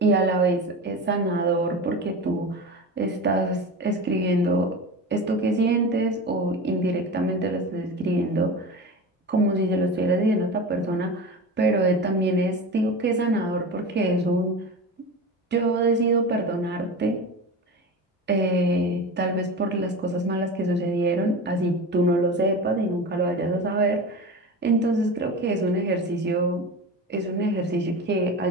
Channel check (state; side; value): normal; both; correlation 0.28